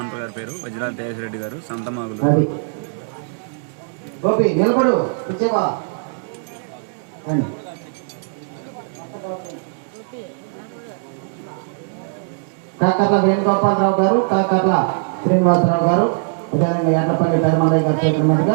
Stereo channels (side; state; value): left; silent; digital silence